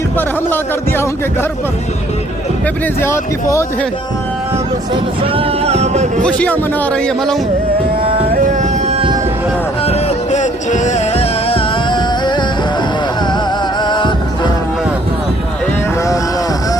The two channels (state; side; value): normal; both; correlation 0.61